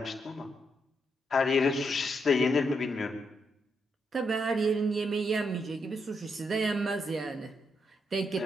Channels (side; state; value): both; normal; correlation 0.80